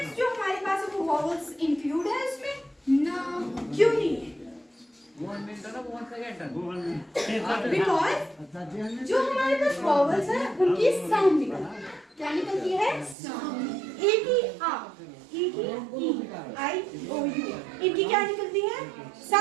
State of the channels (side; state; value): left; drops out; at 13.2 s